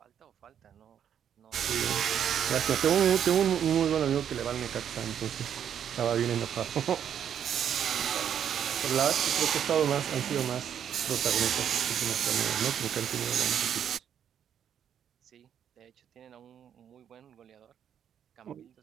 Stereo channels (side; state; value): left; quieter; 9.0 dB